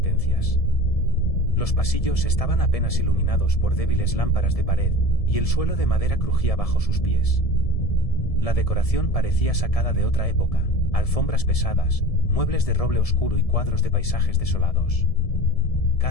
Los pasillos estaban apenas iluminados por débiles lámparas de pared, y el suelo de madera crujía bajo sus pies. La decoración parecía sacada de otra época, alfombras pesadas, muebles de roble oscuro y cuadros de paisajes desolados.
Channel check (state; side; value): late; right; 1.7 ms